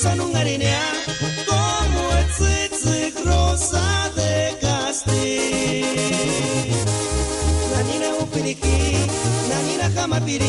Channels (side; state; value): both; identical; correlation 1.00